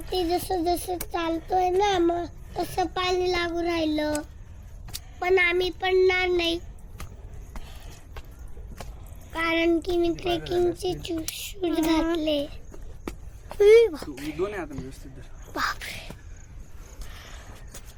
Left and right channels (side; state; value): both; identical; correlation 1.00